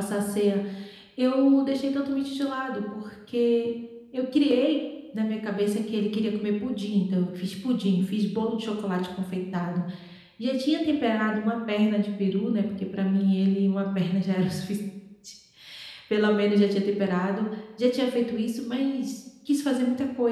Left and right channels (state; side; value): identical; both; correlation 1.00